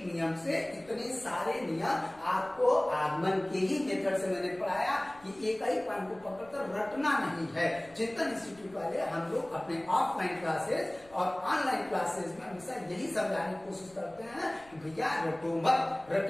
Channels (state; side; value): noise; left; rumble, 26 dB below the sound